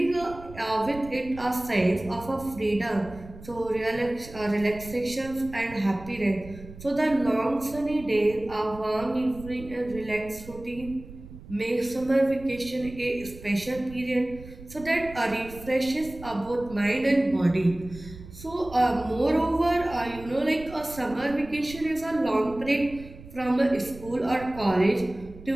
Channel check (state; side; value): noise; right; rumble, 16 dB below the sound